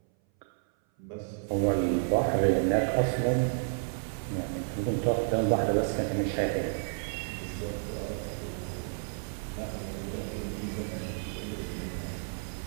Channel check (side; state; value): left; silent; 57 dB below the other